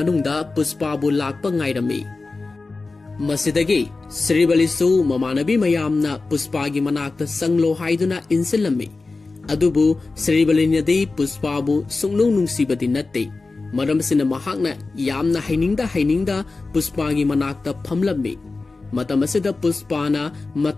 पुष्पाबु लाकपा ngairami मसिदगी श्रीबलीसु ममानबी मयामना पुष्पागी मनाक्ता संगलो हाइदुना इंसिलमी अदुबु श्रीबलीनदी पुष्पाबु सुंगनु नुंसीबदी नत्ते मरमसिना महांगना यामना हाइनिंगदा पुष्पागी मनाक्ता फमलमी मतमसिदा पुष्पाना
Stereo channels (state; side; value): quieter; right; 3.7 dB